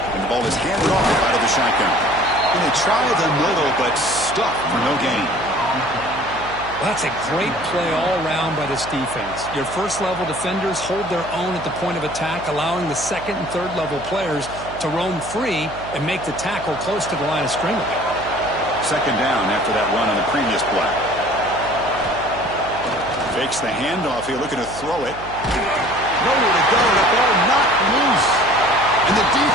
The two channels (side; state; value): right; noise; hum, 14 dB below the sound